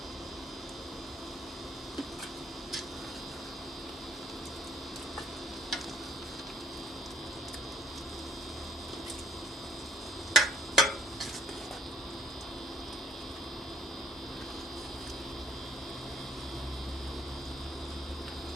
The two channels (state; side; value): normal; both; correlation 0.64